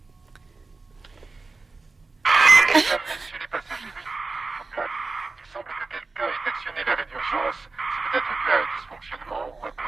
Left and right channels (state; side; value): quieter; left; 3.7 dB